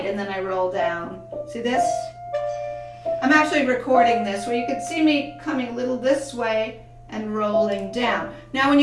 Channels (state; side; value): identical; both; correlation 1.00